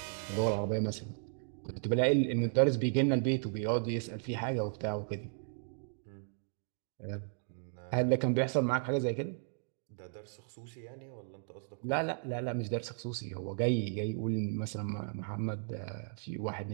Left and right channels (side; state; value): left; silent; digital silence